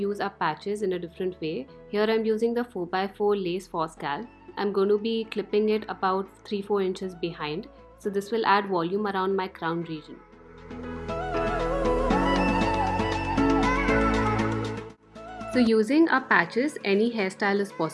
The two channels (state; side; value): identical; both; correlation 1.00